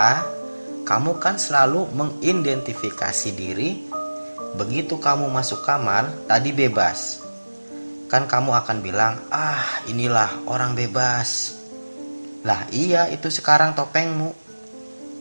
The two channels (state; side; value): inverted; both; correlation -1.00